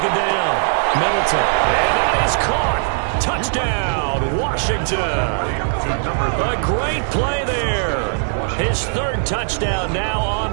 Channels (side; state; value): left; silent; 66 dB below the other